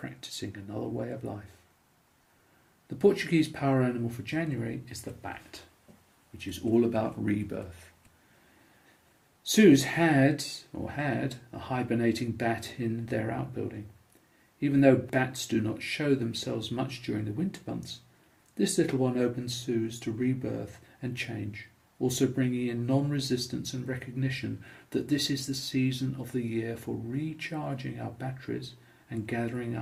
another way of life. The Portuguese power animal for January is the bat, which is all about rebirth. Suze had a hibernating bat in their outbuilding. Even though bats do not show themselves much during the winter months, this little one opens Suze to rebirth and change, also bringing in non-resistance and recognition that this is the season of the year for recharging our batteries and gathering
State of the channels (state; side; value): identical; both; correlation 1.00